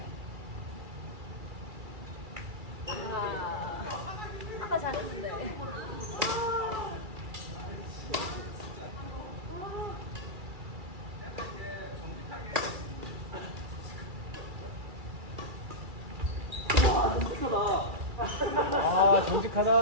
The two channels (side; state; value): left; late; 2.3 ms